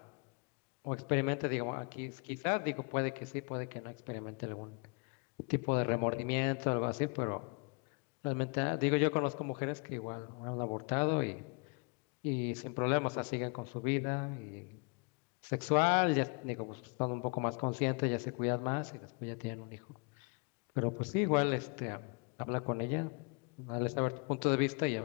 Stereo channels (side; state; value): right; quieter; 34.3 dB